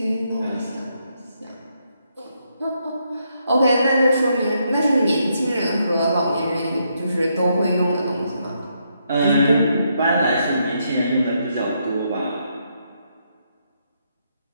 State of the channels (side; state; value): both; inverted; correlation -0.77